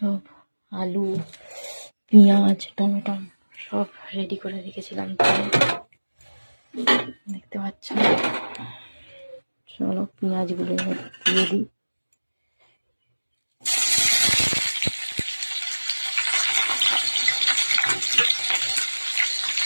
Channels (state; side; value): inverted; both; correlation -1.00